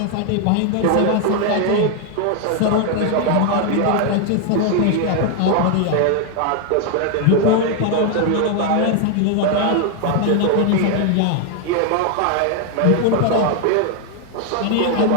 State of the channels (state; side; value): different; both; correlation 0.00